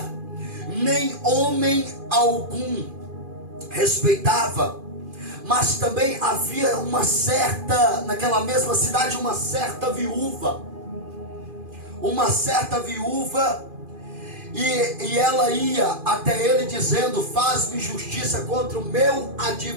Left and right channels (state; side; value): late; left; 2.4 ms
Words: nem homem algum respeitava. Mas também havia naquela mesma cidade, uma certa viúva. E ela ia até ele dizendo: faz-me justiça contra o meu